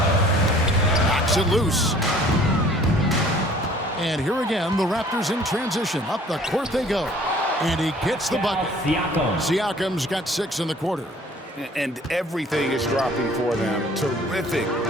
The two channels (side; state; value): both; normal; correlation 0.53